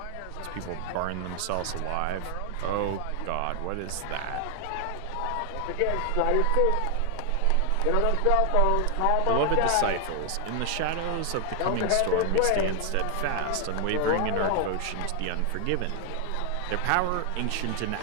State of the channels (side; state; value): both; different; correlation 0.00